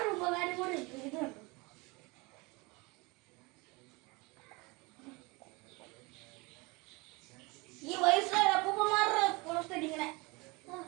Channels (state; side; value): quieter; left; 25.9 dB